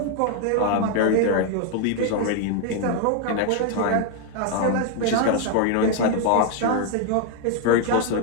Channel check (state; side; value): different; both; correlation 0.01